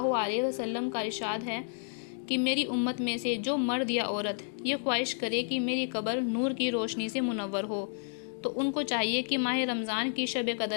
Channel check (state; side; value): silent; right; digital silence